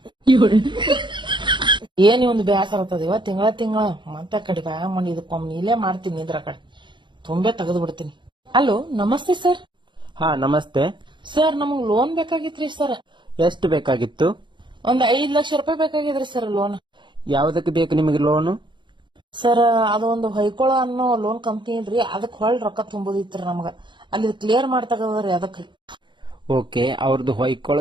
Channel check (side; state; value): left; late; 0.23 ms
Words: ಏನ್ ಒಂದು ಬೇಸರ ಆಗ್ತದ ಇವ ತಿಂಗಳ ಮತ್ತೆ ಕಡೆ ಬ್ಯಾ ಮಾಡಿ ಇದಕ್ಕೊಮ್ಮೆ ಇಲ್ಲೇ ಮಾಡ್ತೀನಿ ಇದ್ರ ಕಡೆ ತುಂಬೆ ತೆಗೆದು ಬಿಡ್ತೀನಿ. ಹಲೋ ನಮಸ್ತೆ ಸರ್. ಹಾ ನಮಸ್ತೆ ಸರ್, ನಮಗ್ ಲೋನ್ ಬೇಕಾಗಿತ್ರಿ ಸರ್. ಎಷ್ಟು ಬೇಕಾಗಿತ್ತು? ಒಂದ್ 5 ಲಕ್ಷ ರೂಪಾಯಿ ಬೇಕಾಗಿದ್ರಿ ಸರ್ ಲೋನ್. ಯಾವ್ದಕ್ಕೆ ಬೇಕು ನಿಮಗೆ ಲೋನು? ಸರ್, ಅದೊಂದು ಹೊಯ್ಕೊಳ ಅನ್ನೋ ಲೋನ್ ಕಂಪ್ನಿ ಇದ್ರಿ, ಅದಕ್ ಹೊಳ್ ರೊಕ್ಕ ತುಂಬುದಿತ್ರಿ ನಮಗ. ಅಲ್ಲಿ ಕ್ಲಿಯರ್ ಮಾಡ್ತಗದ್ರಿ ಅದಕ್ರಿ. ಓಕೆ, ಅವ್ರದ್ದು ಹೊಯ್ಕೊಳ